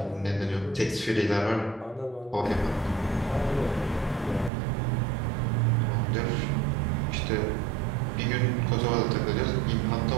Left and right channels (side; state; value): left; drops out; at 4.5 s